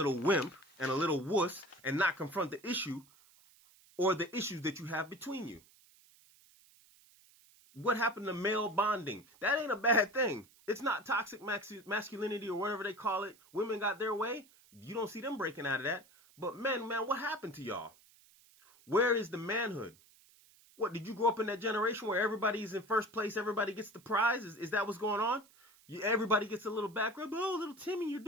wimp and a little wuss and not confront the issue or the issues that you have between you. What happened to male bonding? That ain't a bad thing. It's not toxic masculinity or whatever they call it. Women got their way. You don't see them breaking out of that. But men, what happened to y'all? Where is the manhood? What, did you grow up in that generation where everybody's in first place, everybody gets the prize? Is that what's going on? Everybody gets a little back rub. Oh, little Timmy, you're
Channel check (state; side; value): noise; right; hiss, 27 dB below the sound